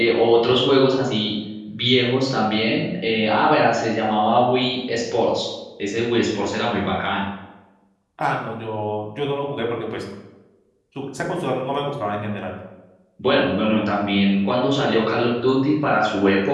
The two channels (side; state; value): both; identical; correlation 1.00